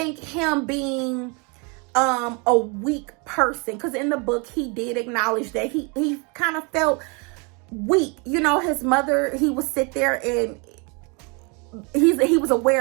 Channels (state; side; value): quieter; left; 32.1 dB